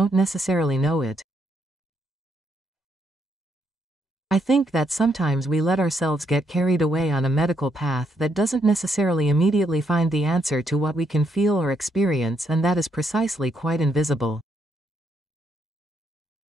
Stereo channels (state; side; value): normal; both; correlation 0.76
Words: necessarily know it. I think that sometimes we let ourselves get carried away on a medical path that doesn't necessarily immediately find the answer to what we can feel or experience, and that is precisely quite invisible.